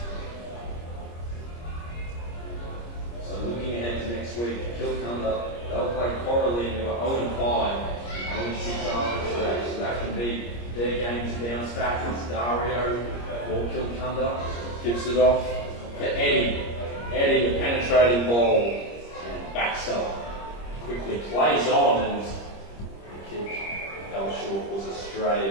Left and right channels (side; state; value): right; late; 25 ms